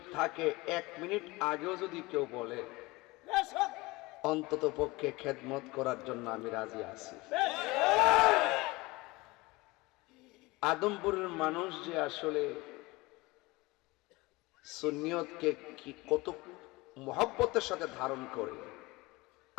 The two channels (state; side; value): quieter; right; 22.3 dB